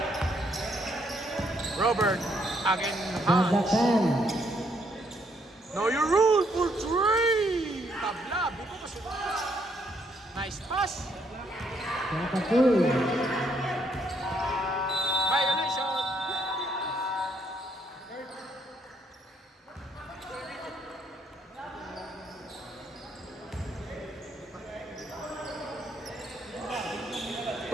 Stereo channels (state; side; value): normal; both; correlation 0.72